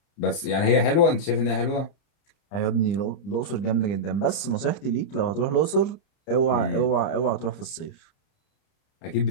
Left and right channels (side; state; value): right; late; 30 ms